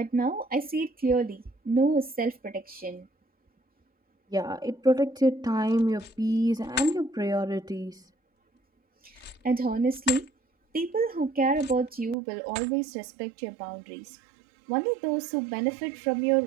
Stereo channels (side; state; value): left; drops out; at 12.2 s